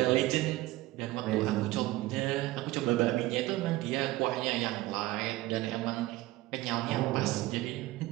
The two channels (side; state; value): left; quieter; 17.8 dB